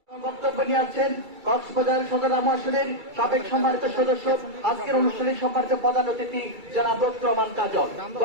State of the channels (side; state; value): left; late; 2.3 ms